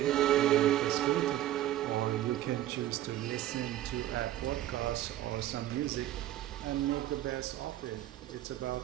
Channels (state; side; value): quieter; left; 13.5 dB